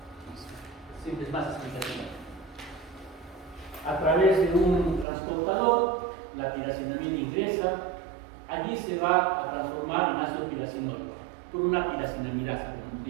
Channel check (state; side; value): drops out; left; at 5.1 s